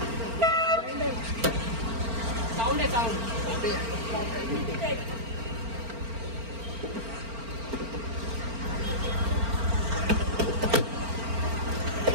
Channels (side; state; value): left; late; 4.4 ms